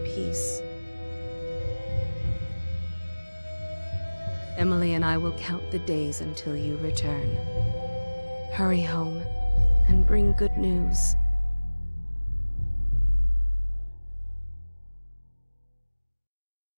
peace. Emily and I will count the days until you return. Hurry home and bring good news.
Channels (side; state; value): both; inverted; correlation -1.00